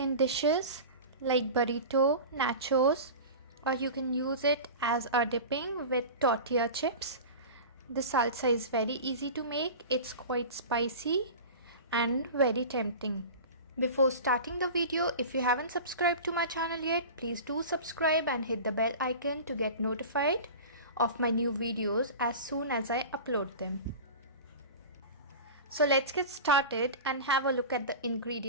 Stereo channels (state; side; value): inverted; both; correlation -0.32